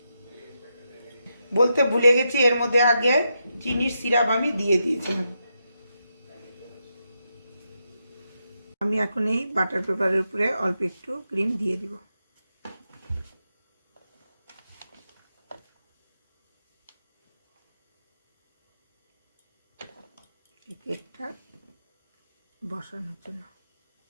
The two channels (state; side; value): inverted; both; correlation -0.84